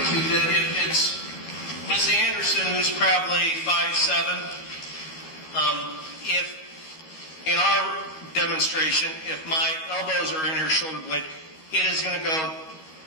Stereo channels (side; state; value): right; late; 13 ms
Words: you that if it's Ms. Anderson, who's probably 5'7", if in our demonstration, if my elbows are in her shoulder blade, it's going to